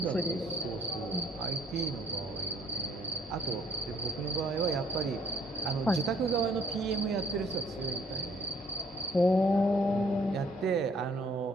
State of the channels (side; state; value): both; normal; correlation 0.62